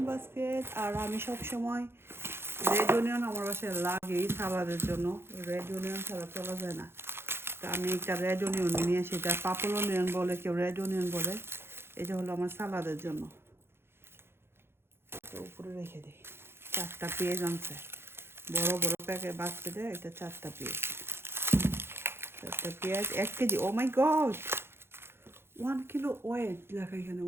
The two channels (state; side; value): late; left; 0.11 ms